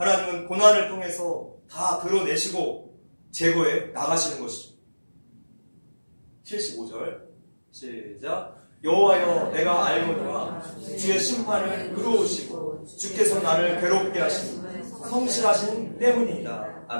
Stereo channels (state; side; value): inverted; both; correlation -1.00